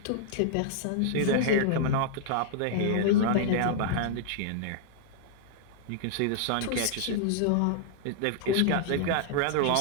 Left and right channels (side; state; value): both; different; correlation -0.01